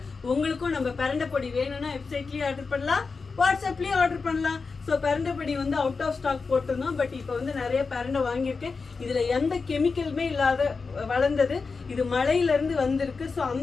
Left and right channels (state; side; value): quieter; right; 4.6 dB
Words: உங்களுக்கும் நம்ம பரண்டை பொடி வேணும்னா வெப்சைட்லயே ஆர்டர் பண்ணலாம், வாட்ஸ்அப்லயே ஆர்டர் பண்ணலாம். ஸோ பரண்டை பொடி வந்து அவுட் ஆஃப் ஸ்டாக் போட்டிருந்தோம். பட் இப்போ வந்து நிறைய பரண்டை வாங்கியிருக்கேன். இதில் எந்த கெமிக்கலுமே இல்லாத வளர்ந்தது. இது மலையிலேருந்து வந்திருக்கு. ஸோ